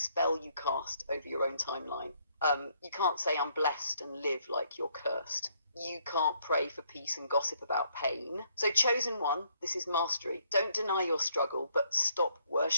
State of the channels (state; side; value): inverted; both; correlation -0.70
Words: you cast over your own timeline. You can't say I'm blessed and live like you're cursed. You can't pray for peace and gossip about pain. So chosen one, this is mastery. Don't deny your struggle, but stop